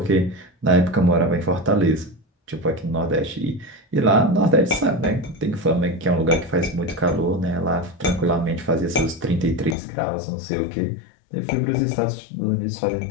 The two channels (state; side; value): drops out; right; at 9.8 s